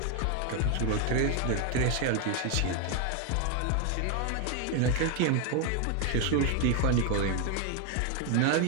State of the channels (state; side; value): different; both; correlation 0.01